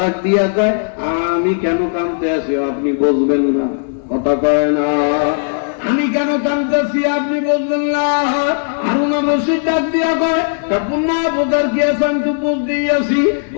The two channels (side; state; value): right; silent; digital silence